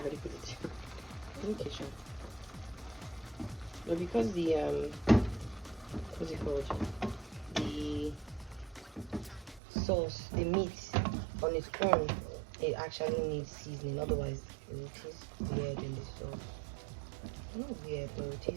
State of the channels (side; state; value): left; drops out; at 9.6 s